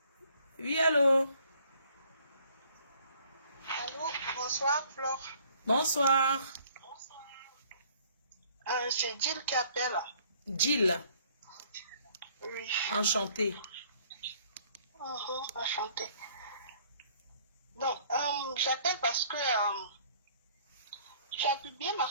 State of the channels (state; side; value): inverted; both; correlation -0.59